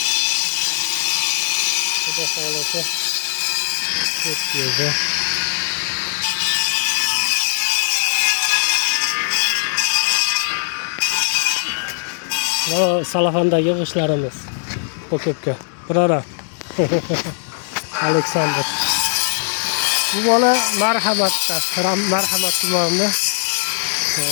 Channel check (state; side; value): silent; right; digital silence